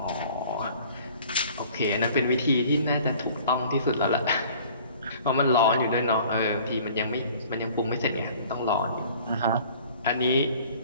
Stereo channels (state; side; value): inverted; both; correlation -0.50